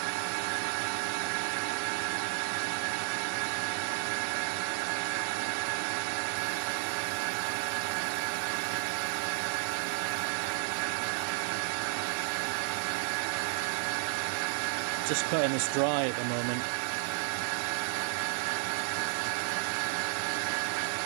Just cutting this dry at the moment.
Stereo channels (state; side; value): silent; left; 56 dB below the other